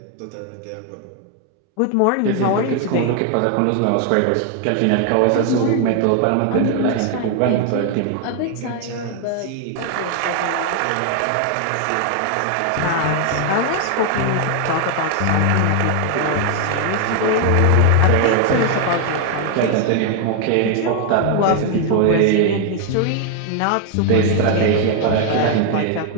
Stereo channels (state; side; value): different; both; correlation 0.01